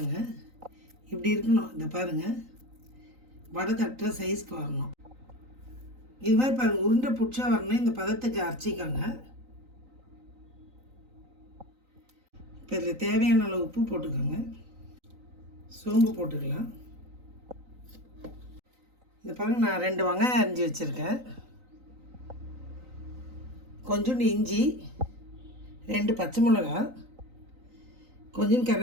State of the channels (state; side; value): late; left; 3.9 ms